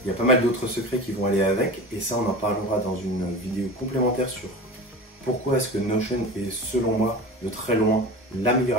Il y a pas mal d'autres secrets qui vont aller avec, et ça on en parlera dans une vidéo complémentaire sur pourquoi est-ce que Notion est selon moi de très loin la meilleure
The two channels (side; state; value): both; normal; correlation 0.33